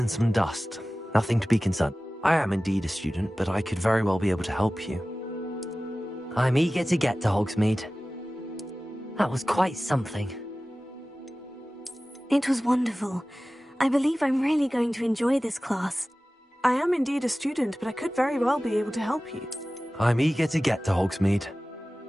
some dust. Nothing to be concerned. I am indeed a student, but I could very well be able to help you. I'm eager to get to Hogsmeade. That was quite something. It was wonderful. I believe I'm really going to enjoy this class. I am indeed a student, but I could very well be able to help you. I'm eager to get to Hogsmeade.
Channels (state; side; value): normal; both; correlation 0.97